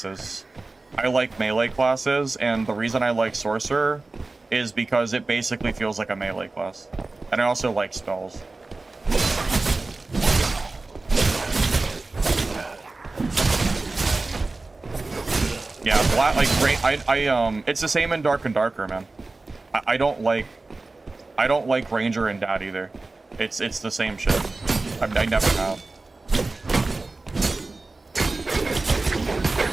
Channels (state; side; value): quieter; left; 3.4 dB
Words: I like melee classes, and the reason I like Sorcerer is because it basically feels like a melee class. And I also like spells. Yeah, it's the same in Dark and Darker, man. I don't like Ranger and Dad either. It's the same shit. I never have.